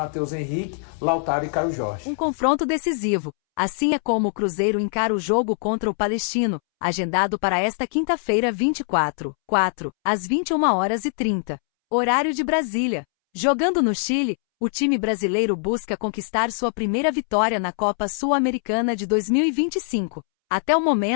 Henrique, Lautaro e Caio Jorge. Um confronto decisivo. Assim é como o Cruzeiro encara o jogo contra o Palestino, agendado para esta quinta-feira 24/4, às 21h30. Horário de Brasília. Jogando no Chile, o time brasileiro busca conquistar sua primeira vitória na Copa Sul-Americana de 2025. Até o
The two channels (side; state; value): right; silent; 64 dB below the other